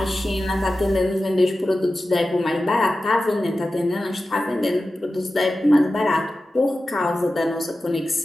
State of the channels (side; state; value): both; normal; correlation 0.94